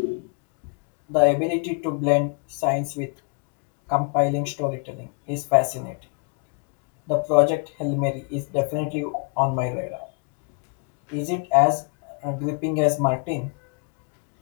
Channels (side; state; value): right; quieter; 37.7 dB